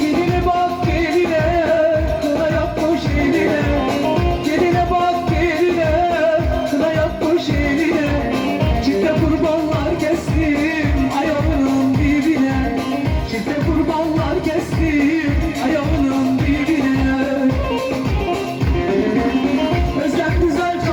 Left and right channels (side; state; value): both; identical; correlation 1.00